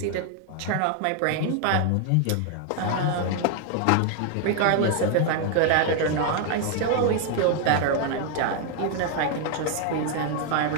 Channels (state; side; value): different; both; correlation 0.01